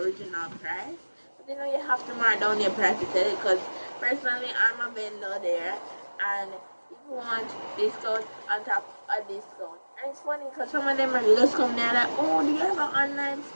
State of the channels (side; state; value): both; inverted; correlation -1.00